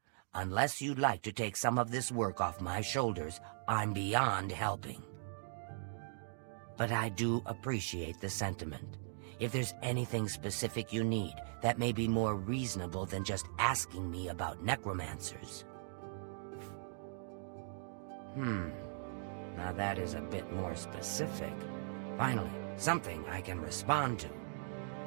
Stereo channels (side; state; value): left; silent; digital silence